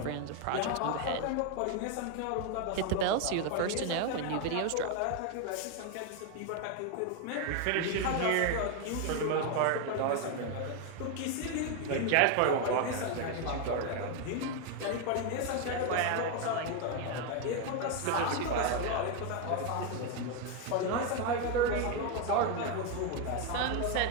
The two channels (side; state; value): both; different; correlation 0.01